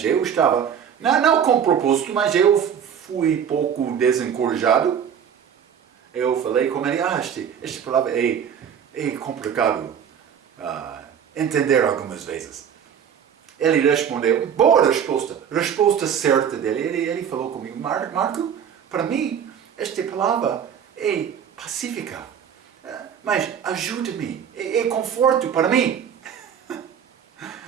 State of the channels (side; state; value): left; quieter; 8.2 dB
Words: eu estava, não com propósito, mas eu fui pouco desencorajado. Eu falei com ele, esta palavra é complicado entender algumas vezes. Ele respondeu, boa resposta certa dele. Ele falou comigo, Marco, para mim, esta palavra é pacífica, mas ajuda-me, é conforto para mim.